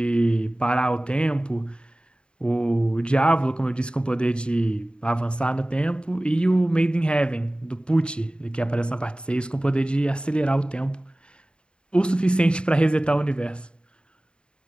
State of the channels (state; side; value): late; right; 0.052 ms